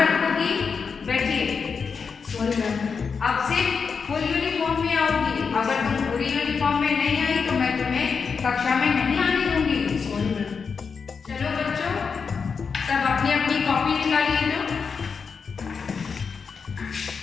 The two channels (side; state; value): right; quieter; 5.6 dB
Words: बैठिए। Sorry ma'am. अब से फुल यूनिफॉर्म में आओगी। अगर तुम पूरी यूनिफॉर्म में नहीं आई तो मैं तुम्हें कक्षा में नहीं आने दूंगी। Sorry ma'am. चलो बच्चों, सब अपनी अपनी कॉपी निकालिए। तो